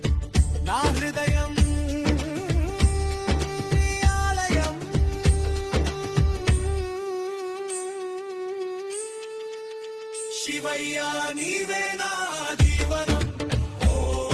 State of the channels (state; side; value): identical; both; correlation 1.00